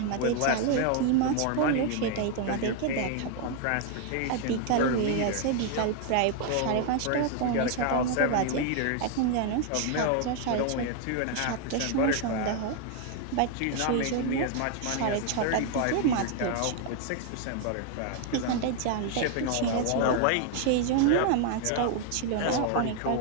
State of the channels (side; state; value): both; different; correlation 0.01